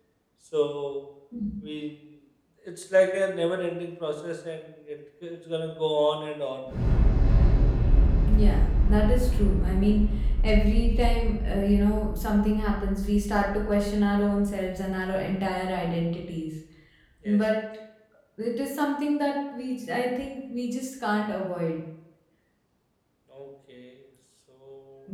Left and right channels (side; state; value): both; identical; correlation 1.00